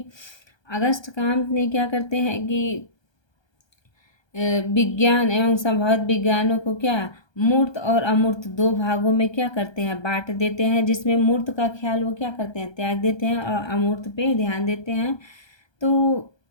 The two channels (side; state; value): right; late; 1.3 ms